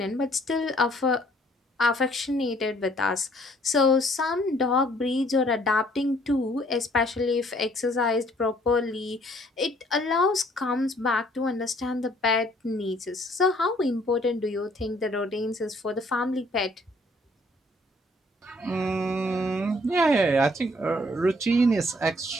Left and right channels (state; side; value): normal; both; correlation 0.62